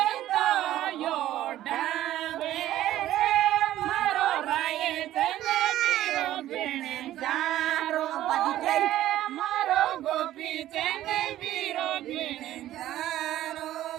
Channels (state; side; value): quieter; left; 13.6 dB